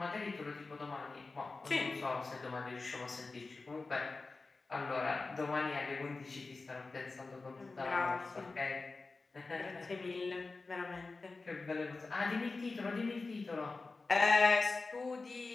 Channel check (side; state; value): right; quieter; 3.8 dB